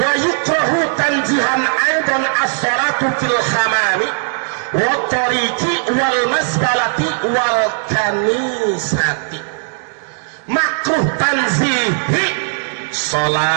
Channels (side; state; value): left; silent; digital silence